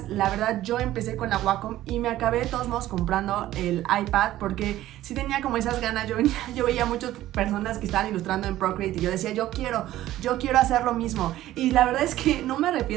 La verdad, yo empecé con la Wacom y me acabé de todos modos comprando el iPad porque sí tenía como esas ganas. Yo veía muchas personas que estaban ilustrando en Procreate y yo decía, yo quiero hacer lo mismo. Y la verdad es que no me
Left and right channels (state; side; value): quieter; left; 14.4 dB